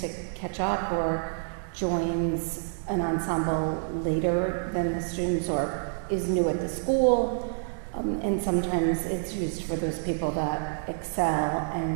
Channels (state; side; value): silent; left; digital silence